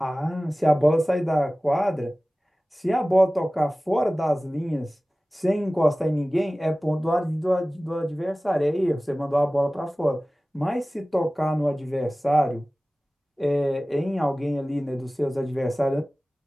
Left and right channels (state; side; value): normal; both; correlation 0.97